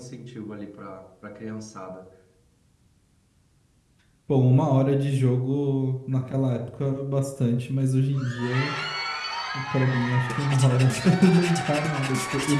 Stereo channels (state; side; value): identical; both; correlation 1.00